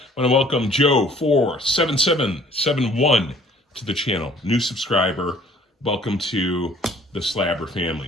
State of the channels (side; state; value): both; normal; correlation 0.55